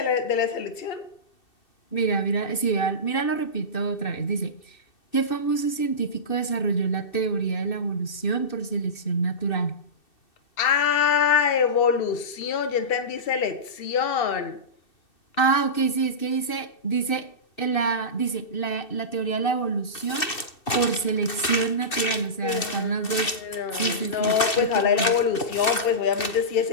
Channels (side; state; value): right; late; 2.6 ms